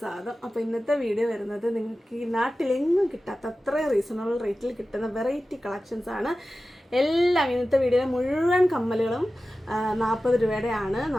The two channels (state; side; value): normal; both; correlation 0.95